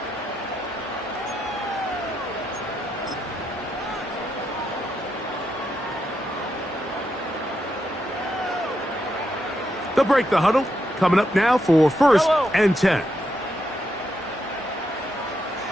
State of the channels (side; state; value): both; normal; correlation 0.82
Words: They'll break the huddle. Coming up now for 1st and 10.